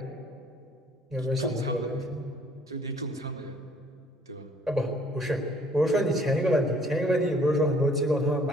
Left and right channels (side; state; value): both; normal; correlation 0.59